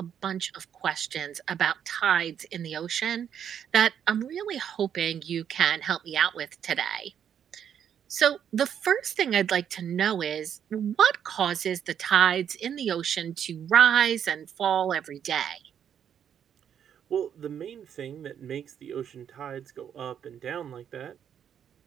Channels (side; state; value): left; quieter; 8.8 dB